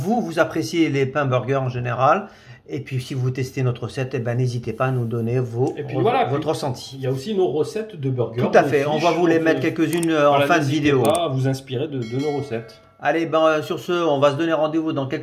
appréciez les pains burgers en général. Et puis, si vous testez notre recette, n'hésitez pas à nous donner votre ressenti. Il y a aussi nos recettes de burgers. Tout à fait. On va vous les mettre quelques-unes en fin de vidéo. N'hésitez pas à vous inspirer de nos recettes. Allez, sur ce, on va se donner rendez-vous dans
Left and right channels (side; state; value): both; identical; correlation 1.00